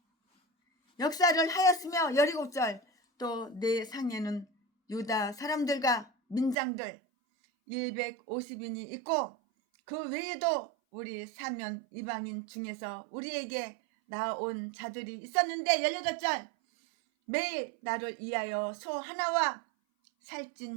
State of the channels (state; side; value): drops out; left; at 6.6 s